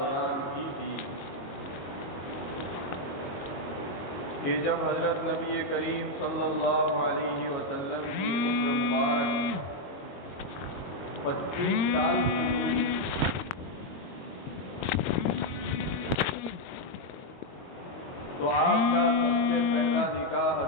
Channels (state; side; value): late; right; 22 ms